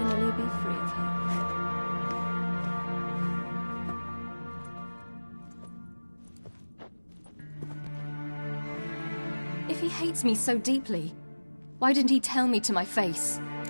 be free of her. If he hates me so deeply, why didn't he tell me to my face?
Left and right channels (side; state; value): both; inverted; correlation -1.00